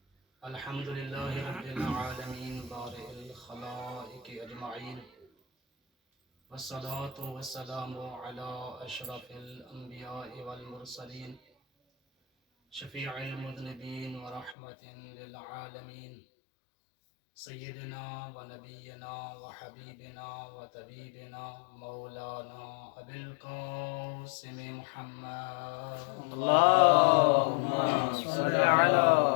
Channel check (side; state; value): right; drops out; at 14.6 s